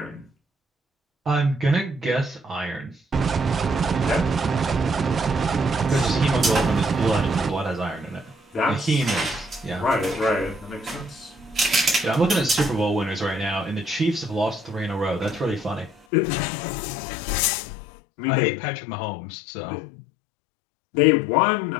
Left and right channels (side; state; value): right; drops out; at 16.1 s